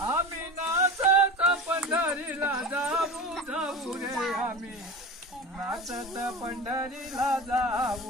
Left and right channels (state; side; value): normal; both; correlation 0.30